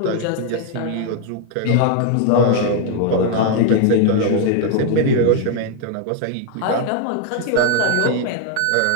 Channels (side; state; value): both; different; correlation 0.00